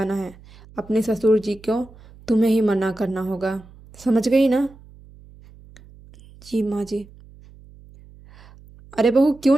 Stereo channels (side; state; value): right; noise; hum, 23 dB below the sound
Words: है। अपने ससुर जी को तुम्हें ही मना करना होगा, समझ गई ना? जी माँ जी। अरे बहू, क्यों